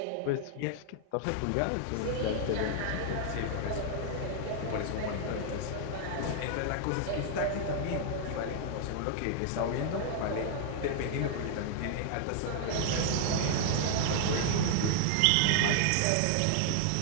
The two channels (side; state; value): both; different; correlation 0.00